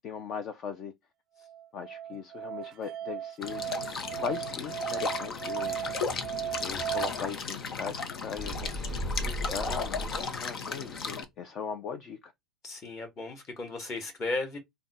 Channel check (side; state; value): both; normal; correlation 0.46